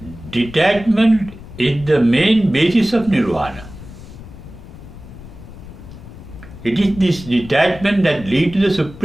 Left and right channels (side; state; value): left; noise; rumble, 16 dB below the sound